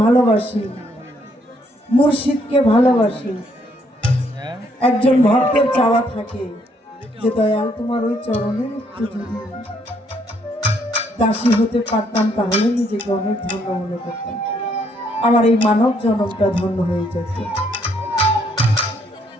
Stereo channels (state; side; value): normal; both; correlation 0.70